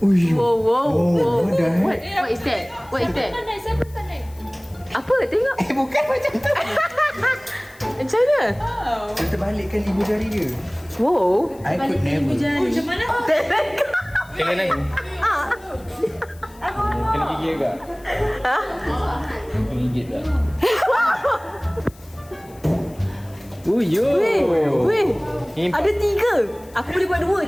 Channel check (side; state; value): left; noise; hiss, 26 dB below the sound